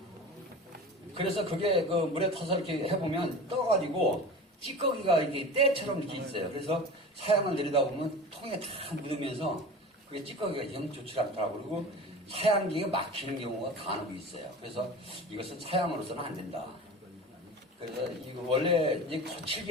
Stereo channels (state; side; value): normal; both; correlation 0.33